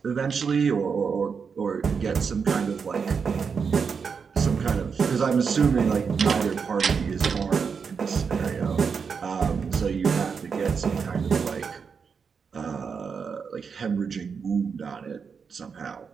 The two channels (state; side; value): quieter; left; 5.9 dB